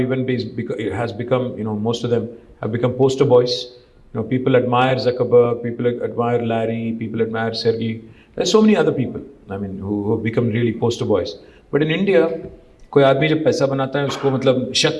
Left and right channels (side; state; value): both; identical; correlation 1.00